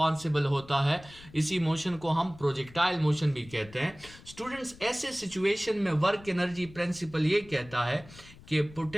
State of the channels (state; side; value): noise; left; rumble, 20 dB below the sound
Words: होता है, इसी मोशन को हम प्रोजेक्टाइल मोशन भी कहते हैं। स्टूडेंट्स ऐसे सिचुएशन में वर्क एनर्जी प्रिंसिपल ये कहता है कि